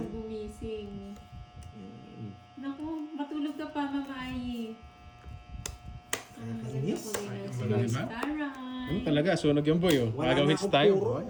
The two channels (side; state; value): both; identical; correlation 1.00